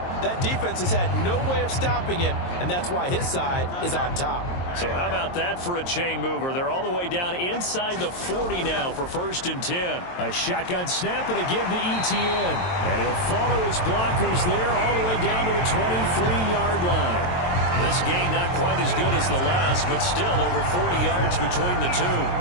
that defense has had no way of stopping him, and that's why his side is on top. So how about that for a chain mover? They're all the way down inside the 40 now for 1st and 10. A shotgun snap and a give to Etienne. And he'll follow his blockers there all the way down to the 23-yard line. This game not quite as good as the last, but still over 40 yards between the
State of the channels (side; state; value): right; late; 23 ms